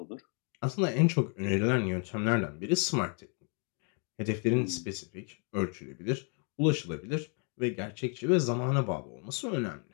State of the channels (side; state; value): right; quieter; 39.4 dB